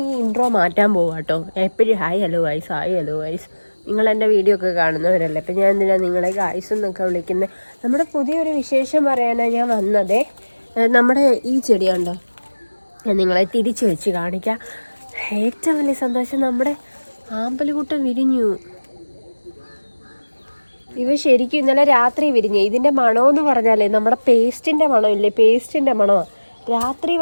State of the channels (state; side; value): inverted; both; correlation -1.00